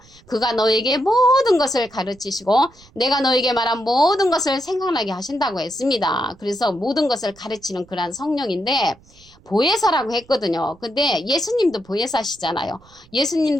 그가 너에게 모든 것을 가르치시고 내가 너에게 말한 모든 것을 생각나게 하신다고 했습니다. 그래서 모든 것을 가르치는 그러한 성령인데 보혜사라고 했거든요. 근데 예수님도 보혜사시잖아요.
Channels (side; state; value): right; noise; rumble, 27 dB below the sound